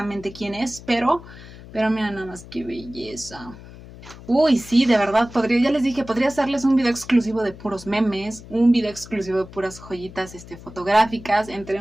quién es, pero mira nada más qué belleza. Uy, sí, de verdad, ya les dije, podría hacerles un video exclusivo de puros memes, un video exclusivo de puras joyitas fotográficas,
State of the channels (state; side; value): noise; left; hum, 17 dB below the sound